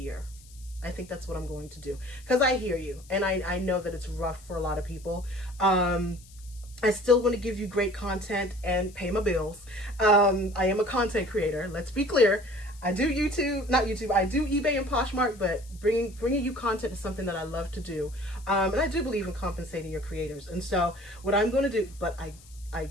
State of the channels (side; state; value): left; noise; hiss, 23 dB below the sound